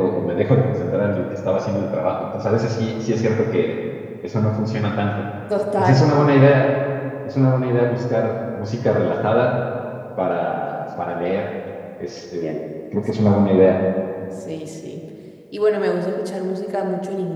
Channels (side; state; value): both; identical; correlation 1.00